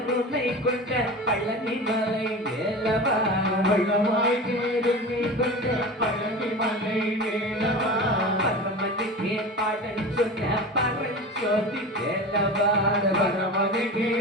கொண்ட பழனிமலை வேலவா, வளமாய் கருணை கொண்ட பழனிமலை வேலவா, பரமனுக்கே பாடல் சொன்ன பரஞ்சோதி வேலவா, பரமனுக்கே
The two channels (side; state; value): both; normal; correlation 0.31